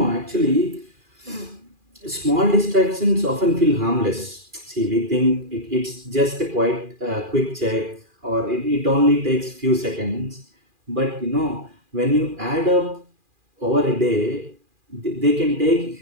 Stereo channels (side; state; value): left; late; 2.4 ms